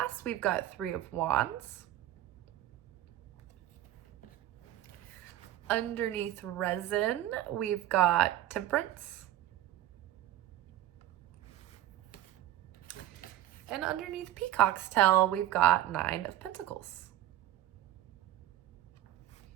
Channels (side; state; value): left; quieter; 13.3 dB